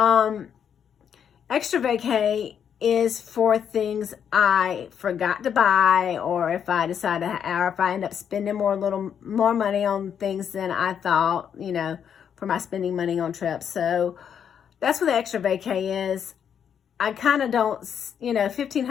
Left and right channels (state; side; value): quieter; right; 8.2 dB